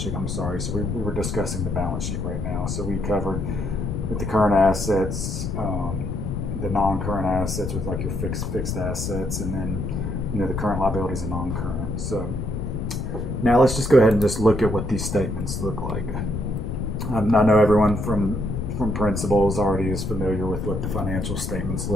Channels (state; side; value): noise; left; rumble, 3 dB below the sound